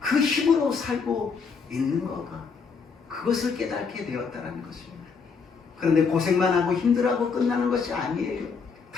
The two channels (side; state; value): right; quieter; 5.4 dB